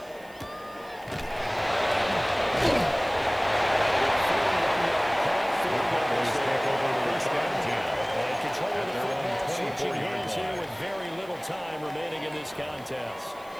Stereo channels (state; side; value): noise; right; hiss, 26 dB below the sound